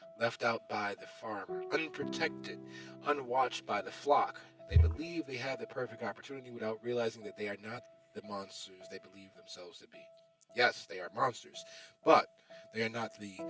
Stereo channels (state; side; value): identical; both; correlation 1.00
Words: left out by the farmer, unprotected, unwatched by the flock. They believe they have the perfect opportunity without realizing that they are not the monsters they believe themselves to be. Yes, they are monsters, but they are not the